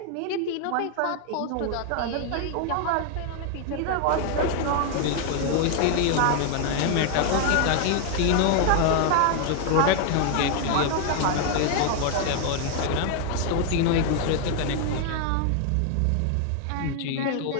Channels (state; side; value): different; both; correlation 0.00